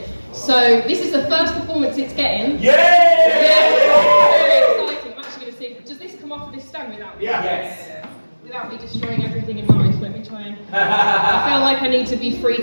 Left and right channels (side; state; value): both; inverted; correlation -1.00